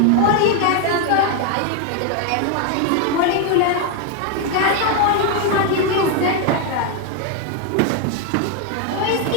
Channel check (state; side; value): different; both; correlation 0.01